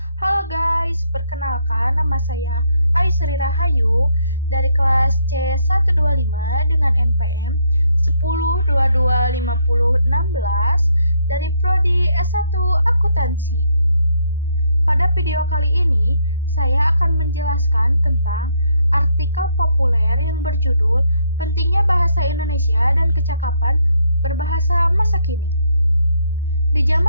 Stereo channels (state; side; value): inverted; both; correlation -0.72